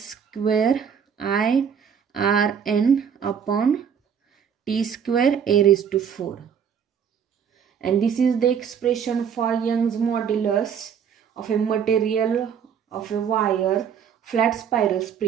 I R N upon T square a raise to 4. And this is the expression for Young's modulus of a material of a wire flat spiral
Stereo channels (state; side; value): quieter; left; 7.5 dB